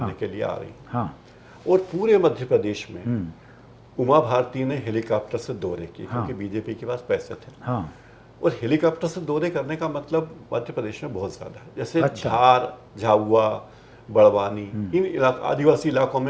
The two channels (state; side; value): identical; both; correlation 1.00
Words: के लिए आ रही हैं। हाँ, और पूरे मध्य प्रदेश में उमा भारती ने हेलीकॉप्टर से दौरे किए, क्योंकि बीजेपी के पास पैसे थे। हाँ, और हेलीकॉप्टर से दौरे करने का मतलब मध्य प्रदेश में बहुत ज्यादा है, जैसे अच्छा। धार, झाबुआ, बड़वानी, इन आदिवासी इलाकों